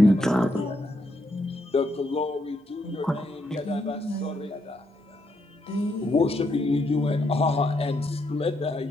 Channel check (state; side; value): normal; both; correlation 0.78